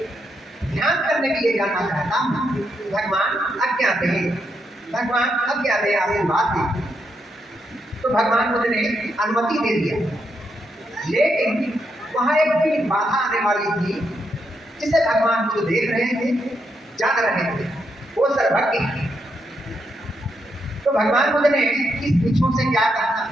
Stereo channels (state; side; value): normal; both; correlation 0.80